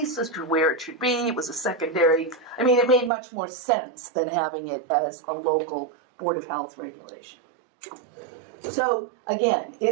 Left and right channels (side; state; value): left; drops out; at 3.1 s